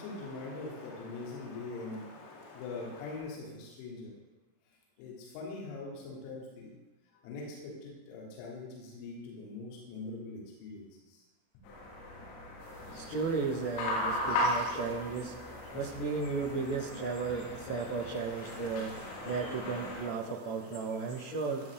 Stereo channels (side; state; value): right; late; 30 ms